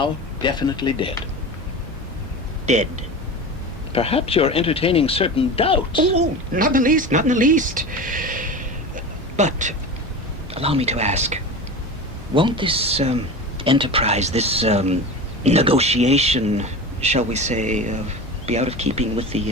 definitely dead. Dead. Perhaps you're entertaining certain doubts. Oh, not in the least, not in the least. But, allow me to ask, won't this, enterprise, this, negotiation, shall we say, be out of keeping with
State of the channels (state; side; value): normal; both; correlation 0.30